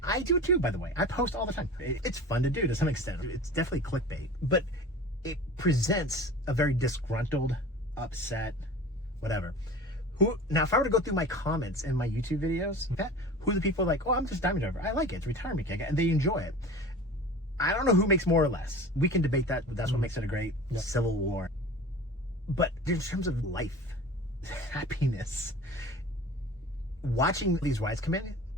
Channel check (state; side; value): normal; both; correlation 0.37